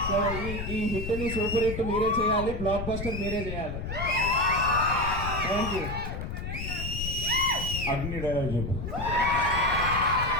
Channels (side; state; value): left; noise; rumble, 5 dB below the sound